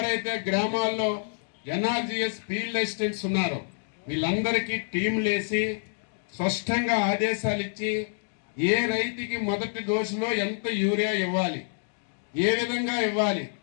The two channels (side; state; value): right; silent; digital silence